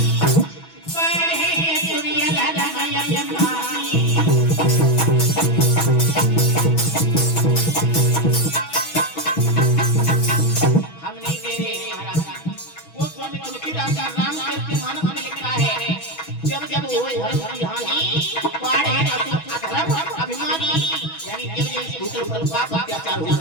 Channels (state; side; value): late; right; 6.2 ms